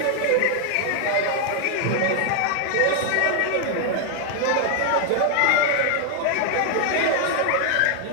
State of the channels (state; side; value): different; both; correlation 0.00